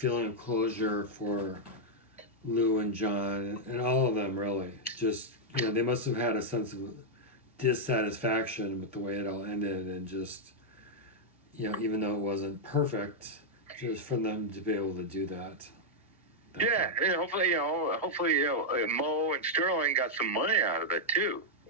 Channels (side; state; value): both; normal; correlation -0.04